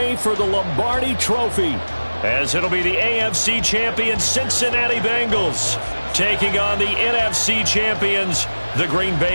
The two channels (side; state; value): both; inverted; correlation -1.00